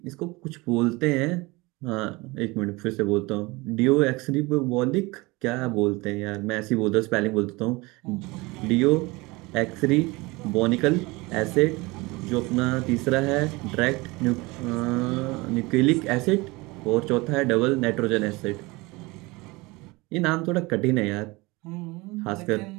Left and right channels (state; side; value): quieter; left; 23.4 dB